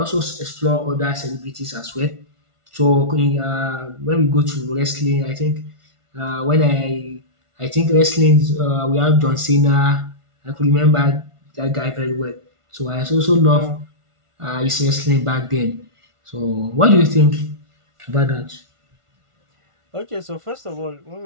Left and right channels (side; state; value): left; late; 1.5 ms